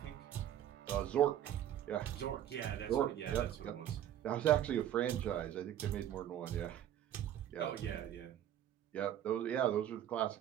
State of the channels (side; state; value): left; quieter; 11.1 dB